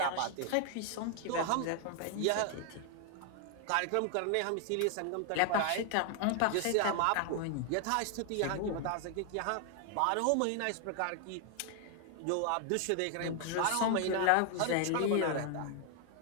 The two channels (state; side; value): different; both; correlation 0.00